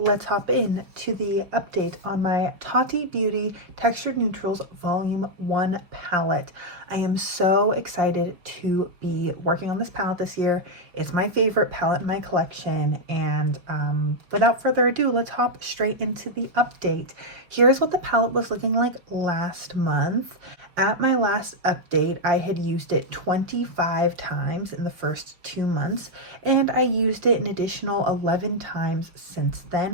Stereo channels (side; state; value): left; late; 5.3 ms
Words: hop in to the update on my Tati Beauty Textured Neutrals Volume 1 palette. I am so excited to be working on this palette this year. It's my favorite palette in my collection, and without further ado, let's hop straight into the update. Here's what the palette was looking like last month. At my last update, I had used it 25 times in the first 2 months, and I used it an additional 11 times since